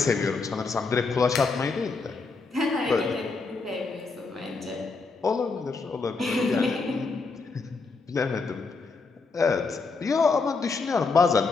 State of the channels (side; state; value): right; quieter; 4.3 dB